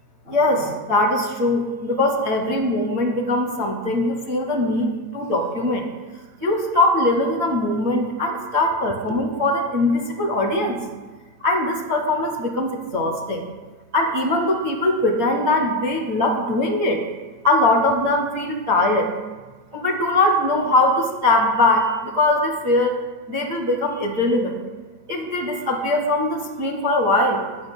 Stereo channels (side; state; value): left; late; 8.6 ms